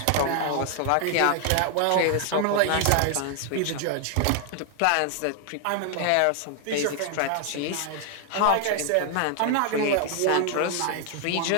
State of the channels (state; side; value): different; both; correlation 0.00